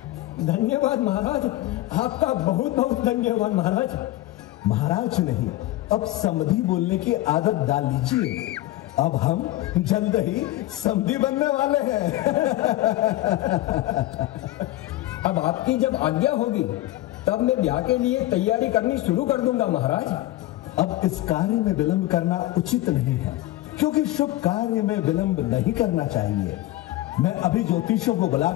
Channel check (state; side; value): quieter; right; 16.2 dB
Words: धन्यवाद महाराज, आपका बहुत बहुत धन्यवाद महाराज। महाराज नहीं, अब समधी बोलने की आदत डाल लीजिए। अब हम जल्द ही समधी बनने वाले हैं। अब आपकी जब आज्ञा होगी तब मैं ब्याह के लिए तैयारी करनी शुरू कर दूंगा महाराज। अब इस कार्य में विलंब करना उचित नहीं है, क्योंकि शुभ कार्य में विलंब नहीं करना चाहिए। मैं अभी ज्योतिषियों को